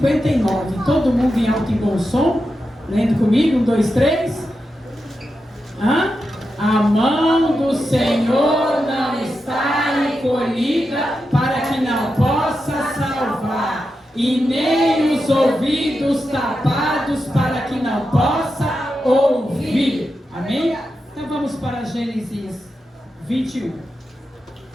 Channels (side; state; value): both; normal; correlation 0.89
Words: Todo mundo em alto e bom som? Lendo comigo? 1, 2, 3. A mão do Senhor não está encolhida para que não possa salvar, e nem os ouvidos tapados para que não possa ouvir. Amém? Então vamos para Gênesis 21.